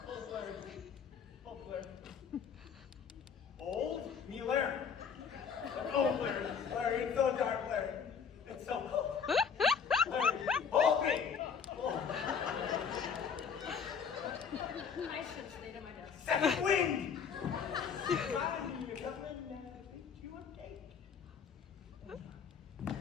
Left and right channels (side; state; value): right; quieter; 6.7 dB